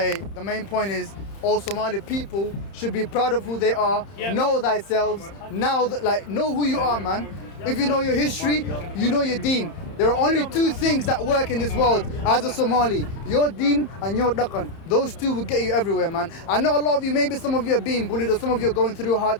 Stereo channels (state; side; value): late; right; 30 ms